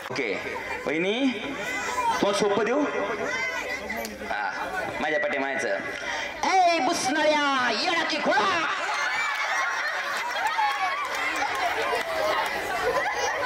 ओके वहिनी तो सोपं देऊ. हा माझ्या पाठी म्हणायचं ए बुसणाऱ्या येडा की खोळा.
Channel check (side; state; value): both; identical; correlation 1.00